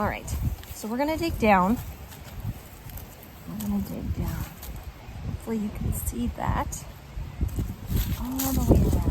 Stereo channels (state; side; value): identical; both; correlation 1.00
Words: right, so we're gonna dig down. Hopefully you can see that all the way around.